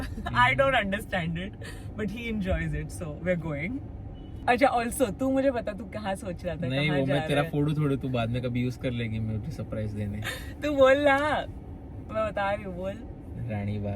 I don't understand it but he enjoys it, so we are going. अच्छा, ऑल्सो तू मुझे बता, तू कहाँ सोच रहा था? नहीं, कहाँ वो जा मैं तेरा रहा है? फोटो थोड़े तू बाद में कभी यूज कर लेगी मुझे सरप्राइज देने. तू बोल ना, मैं बता रही हूँ, बोल.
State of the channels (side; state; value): both; identical; correlation 1.00